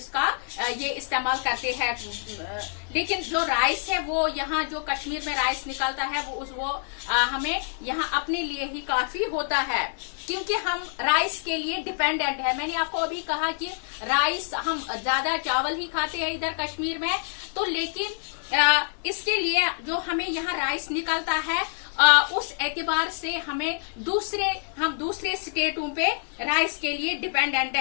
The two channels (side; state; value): right; silent; 60 dB below the other